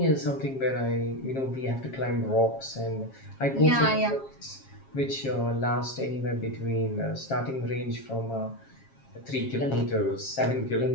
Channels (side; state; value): right; late; 7.4 ms